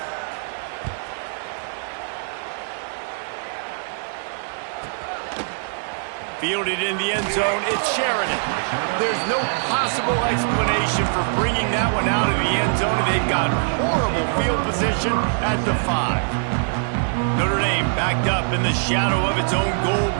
Fielded in the end zone, it's Sheridan. There's no possible explanation for bringing that one out of the end zone, and they've got horrible field position at the 5. Notre Dame backed up in the shadow of its own goal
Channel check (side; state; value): left; silent; 62 dB below the other